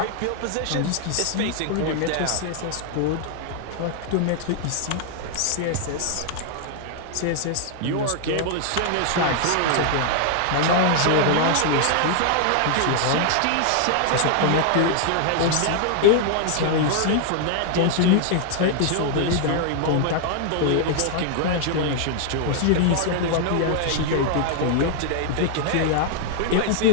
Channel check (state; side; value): different; both; correlation 0.00